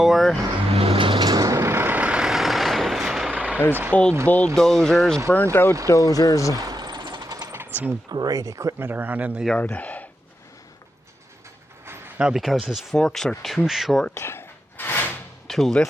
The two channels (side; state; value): both; normal; correlation 0.86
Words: There's old bulldozers, burnt out dozers. Some great equipment around in the yard. Now because his forks are too short to